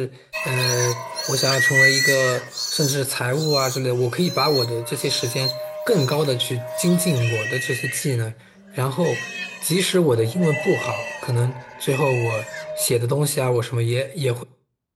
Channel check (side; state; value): both; identical; correlation 1.00